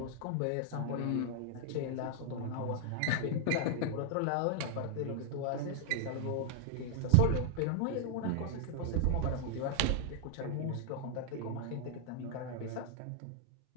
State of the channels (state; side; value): different; both; correlation 0.00